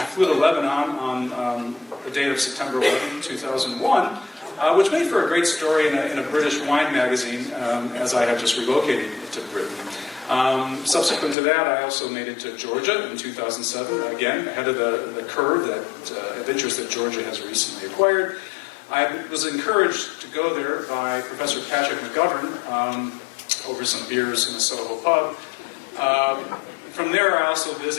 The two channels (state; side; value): drops out; right; at 11.4 s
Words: flew to Lebanon on the date of September 11, 2001, which made for a great story in a British wine magazine, as I had just relocated to Britain. Subsequent to that, I also made it to Georgia in 2007, again, ahead of the curve of interest that Georgia has recently acquired. I was encouraged to go there by Professor Patrick McGovern over some beers in a Soho pub. From there, I also